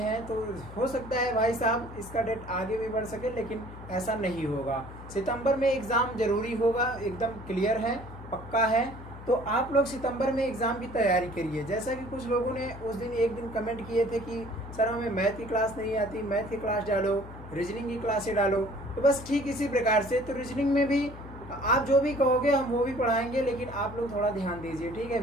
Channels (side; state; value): left; noise; hum, 14 dB below the sound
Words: तो हो सकता है भाई साहब इसका डेट आगे भी बढ़ सके, लेकिन ऐसा नहीं होगा। सितंबर में एग्ज़ाम जरूरी होगा, एकदम क्लियर है, पक्का है। तो आप लोग सितंबर में एग्ज़ाम की तैयारी करिए। जैसा कि कुछ लोगों ने उस दिन एक दिन कमेंट किए थे कि सर हमें मैथ की क्लास नहीं आती, मैथ की क्लास डालो, रीजनिंग की क्लासें डालो। तो बस ठीक इसी प्रकार से तो रीजनिंग में भी आप जो भी कहोगे हम वो भी पढ़ाएंगे, लेकिन आप लोग थोड़ा ध्यान दीजिए। ठीक है,